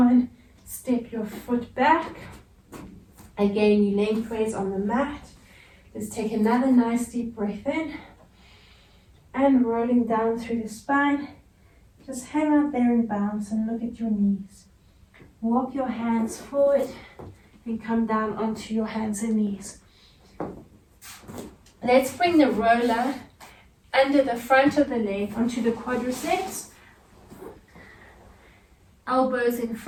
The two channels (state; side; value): identical; both; correlation 1.00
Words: Step your foot back. Again, you lengthways on the mat. Let's take another nice deep breath in. And rolling down through the spine. Just hang out there and bounce and look at your knees. Walk your hands forward and come down onto your hands and knees. Let's bring the roller under the front of the leg onto the quadriceps. Elbows in